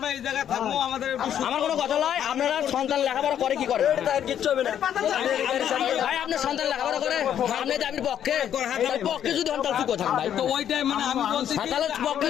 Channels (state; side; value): quieter; right; 9.8 dB